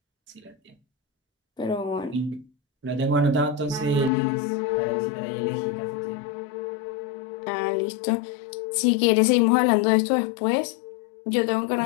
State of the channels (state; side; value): drops out; right; at 4.1 s